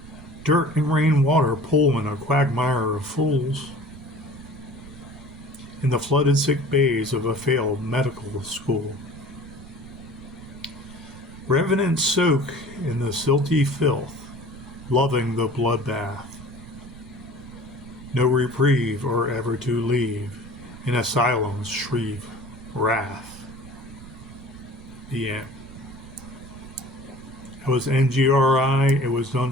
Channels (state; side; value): noise; right; rumble, 17 dB below the sound